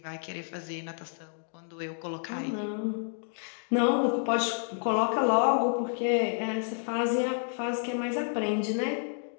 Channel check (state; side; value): silent; right; 58 dB below the other